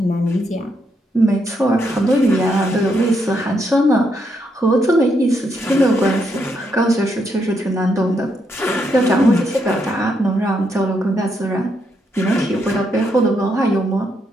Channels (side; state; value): both; normal; correlation 0.78